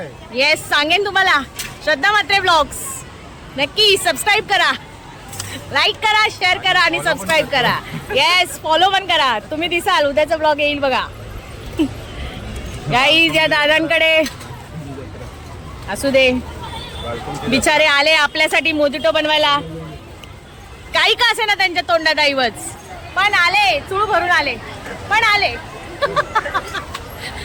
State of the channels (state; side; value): identical; both; correlation 1.00